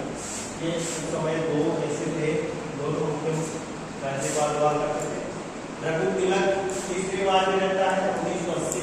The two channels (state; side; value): identical; both; correlation 1.00